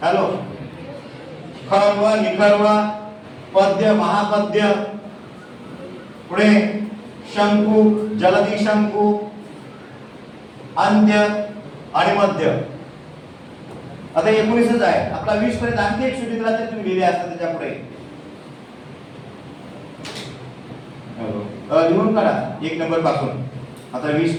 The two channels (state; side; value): identical; both; correlation 1.00